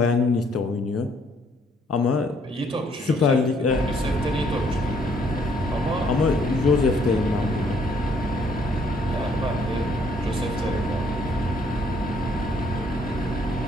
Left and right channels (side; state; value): both; normal; correlation 0.66